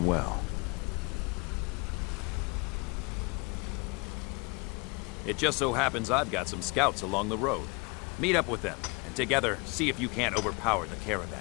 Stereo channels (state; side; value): quieter; right; 29.3 dB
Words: well. It just so happens I've got some scouts along the road. Meet up with them, and together, see if you can't overpower the caravan.